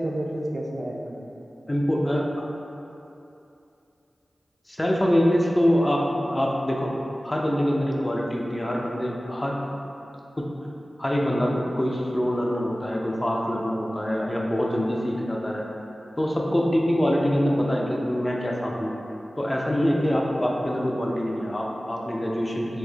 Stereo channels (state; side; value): normal; both; correlation 0.97